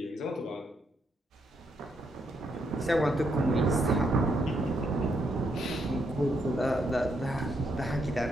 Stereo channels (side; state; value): both; normal; correlation 0.77